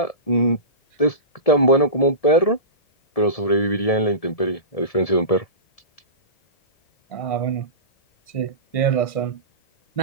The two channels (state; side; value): late; right; 1.7 ms